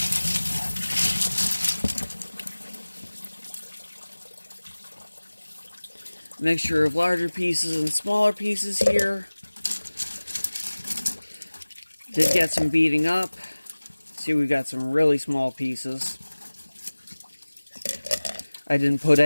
Mixture of larger pieces and smaller pieces here. Did get some beating up. See, we've got some really small pieces. I didn't put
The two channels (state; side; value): inverted; both; correlation -1.00